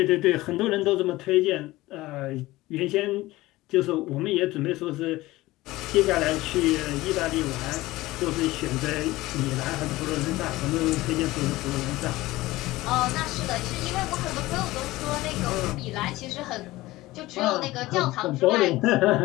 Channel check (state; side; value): quieter; right; 18.4 dB